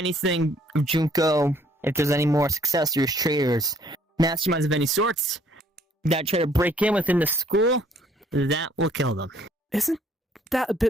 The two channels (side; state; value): both; normal; correlation 0.63